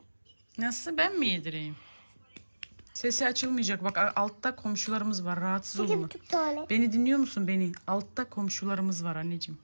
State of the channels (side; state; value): both; inverted; correlation -1.00